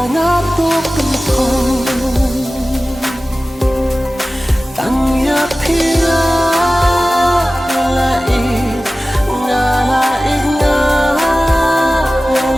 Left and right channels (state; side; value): normal; both; correlation 0.96